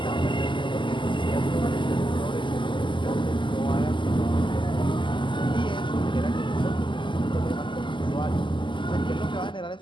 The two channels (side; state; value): right; late; 0.24 ms